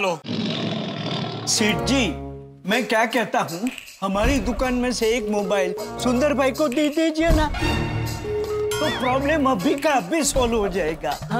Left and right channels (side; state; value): both; identical; correlation 1.00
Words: सेठ जी, मैं क्या कहता हूँ, हमारी दुकान में से एक मोबाइल सुंदर भाई को दे दीजिए ना, तो प्रॉब्लम अभी का अभी सॉल्व हो जाएगा।